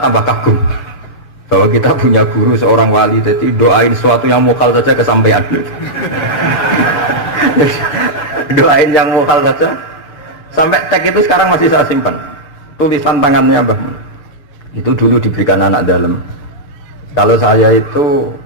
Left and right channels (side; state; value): right; late; 6.8 ms